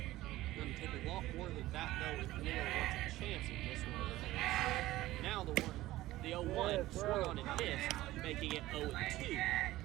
Going to take a lot more than that though if Willow wants a chance in this one. Now the 0-1 swung on and missed, making it 0-2.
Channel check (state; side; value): quieter; left; 16.5 dB